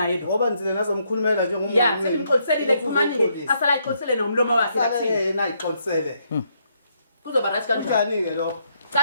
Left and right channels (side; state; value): both; inverted; correlation -0.75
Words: lo. ngoba nzile nazomkhulumela njengomngane Ya, sengimxoliselile kumani asala ixolisele nomlomo wakhe kathini. yena ayixolisele Kuzoba right kanjani? njani ke lo